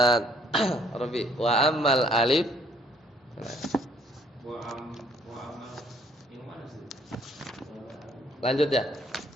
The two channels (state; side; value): normal; both; correlation 0.63